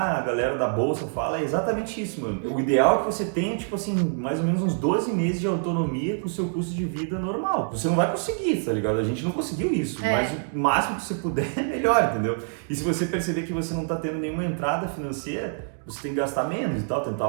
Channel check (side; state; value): left; silent; digital silence